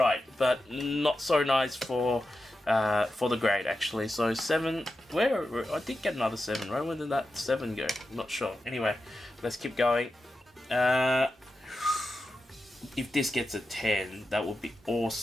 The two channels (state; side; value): normal; both; correlation 0.90